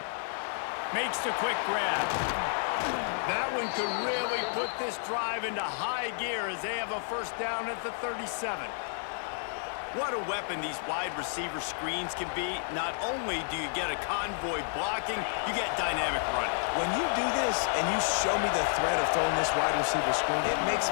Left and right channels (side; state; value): right; silent; 55 dB below the other